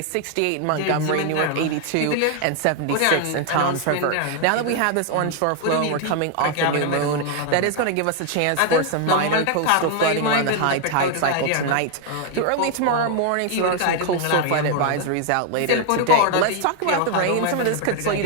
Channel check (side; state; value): both; different; correlation 0.00